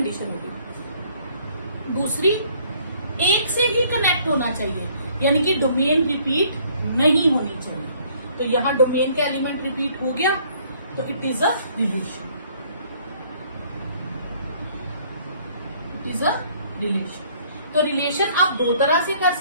होगी। दूसरी, एक से ही कनेक्ट होना चाहिए, यानी कि डोमेन रिपीट नहीं होनी चाहिए। तो यहां डोमेन का एलिमेंट रिपीट हो गया, तो it is a relation, it is a relation. तो रिलेशन आप 2 तरह से कर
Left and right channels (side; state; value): both; inverted; correlation -0.61